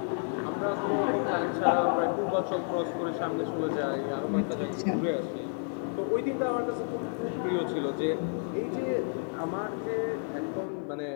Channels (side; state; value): right; silent; 57 dB below the other